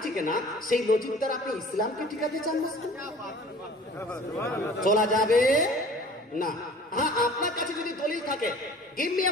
টিকে না, সেই লজিক দ্বারা আপনি ইসলামকে টিকাতে চান না, চলা যাবে না। হ্যাঁ, আপনার কাছে যদি দলিল থাকে, গিভ মি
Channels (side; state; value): both; normal; correlation 0.47